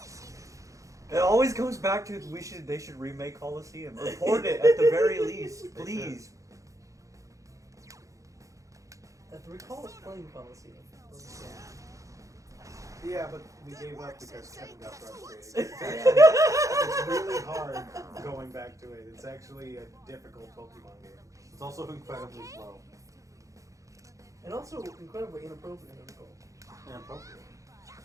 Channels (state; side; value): late; left; 0.16 ms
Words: It always goes back to they should remake Coliseum. Report it at the very least, please. I recall us playing Coliseum. Yeah, but we gave up because Kevin got frustrated. Yeah. It's really hard going back to it. It's actually a difficult Pokemon game. It's also incredibly slow. And also incredibly inappropriate. I recall. Inappropriate.